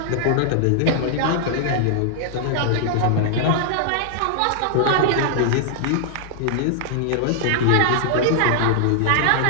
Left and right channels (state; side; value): different; both; correlation -0.01